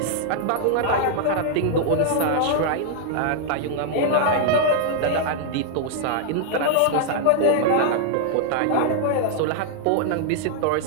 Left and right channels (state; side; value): different; both; correlation -0.01